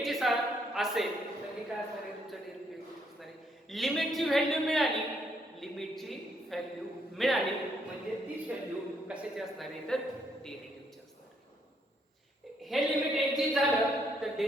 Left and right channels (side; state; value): both; normal; correlation 0.72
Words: जी असेल तर हे काय असणार आहे तुमचं डेरिव्हेटिव्ह असणार आहे. लिमिटची व्हॅल्यू मिळाली म्हणजे ती व्हॅल्यू कशाची असणार आहे तर डेरिव्हेटिव्हची असणार आहे. हे लिमिट एक्झिस्ट झालं तर